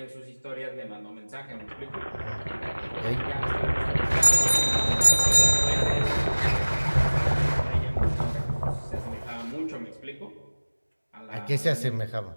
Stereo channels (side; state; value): both; inverted; correlation -1.00